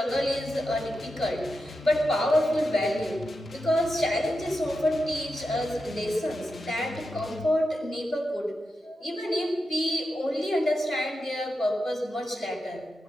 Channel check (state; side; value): normal; both; correlation 0.89